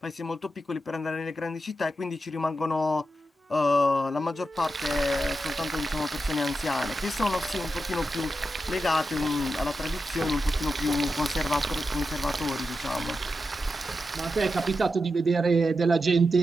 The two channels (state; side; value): normal; both; correlation 0.88